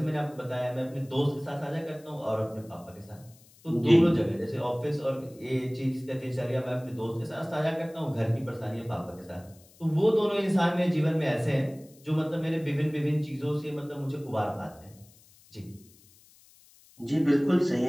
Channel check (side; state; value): left; noise; hiss, 27 dB below the sound